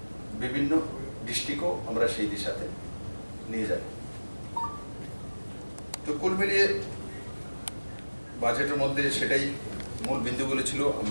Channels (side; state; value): both; inverted; correlation -1.00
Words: বিভিন্ন ডিস্ট্রিক্টও আমরা সেই দিশাতে নিয়ে যাব। তো কুল মিলিয়ে বাজেটের মধ্যে সেটাই মূল বিন্দুগুলো ছিল,